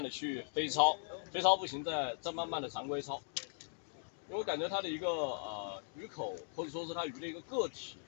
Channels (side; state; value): right; silent; digital silence